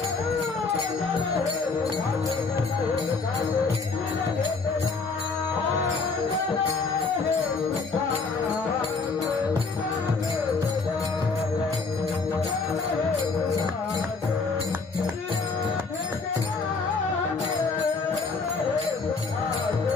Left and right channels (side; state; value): right; quieter; 4.3 dB